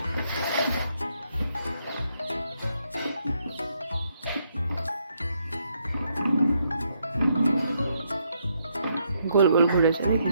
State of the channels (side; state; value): both; inverted; correlation -0.76